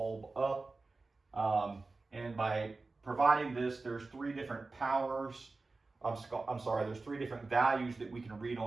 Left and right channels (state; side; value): quieter; left; 3.6 dB